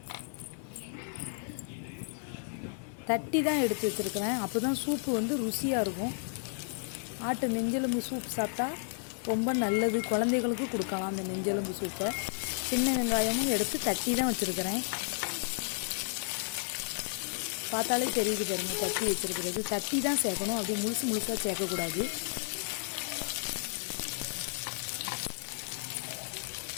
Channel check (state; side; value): silent; right; digital silence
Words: தட்டி தான் எடுத்து வச்சுருக்கிறேன். அப்போ தான் சூப்பு ருசியாக இருக்கும். ஆட்டு நெஞ்செலும்பு சூப் சாப்பிட்டா ரொம்ப நல்லது. குழந்தைகளுக்கு கொடுக்கலாம் அந்த நெஞ்செலும்பு சூப்பை. சின்ன வெங்காயமும் எடுத்து தட்டி தான் வச்சுருக்கிறேன். பார்த்தாலே தெரியுது பாருங்க, தட்டி வச்சுருக்கிறது. தட்டி தான் சேர்க்கணும், அப்படி முழுசாக சேர்க்கக்கூடாது.